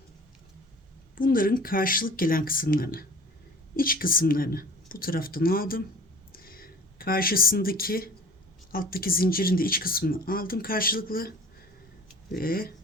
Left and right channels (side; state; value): both; normal; correlation 0.43